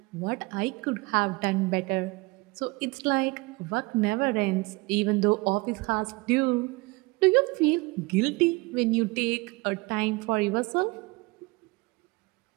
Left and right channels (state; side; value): quieter; left; 24.4 dB